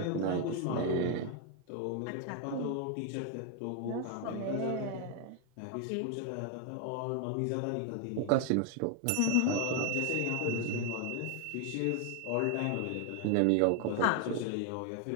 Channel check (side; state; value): both; different; correlation 0.00